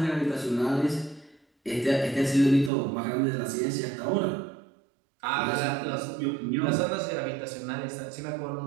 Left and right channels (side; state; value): left; drops out; at 2.7 s